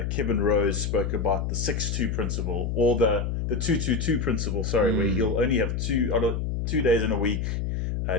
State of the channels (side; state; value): left; noise; hum, 1 dB below the sound